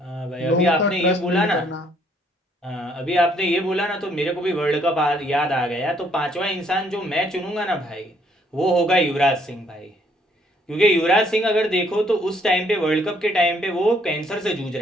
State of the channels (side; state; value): both; normal; correlation 0.67